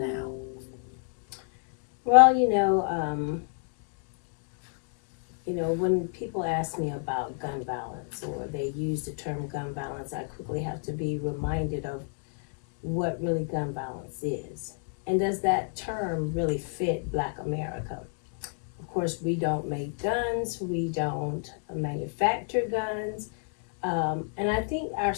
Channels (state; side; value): silent; right; 56 dB below the other